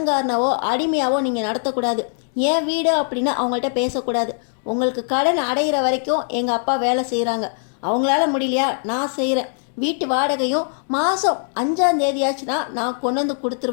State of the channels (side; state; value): right; silent; digital silence